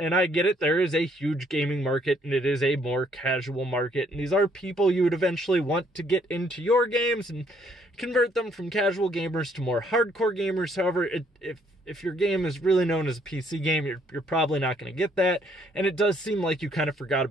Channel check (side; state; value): both; normal; correlation 0.66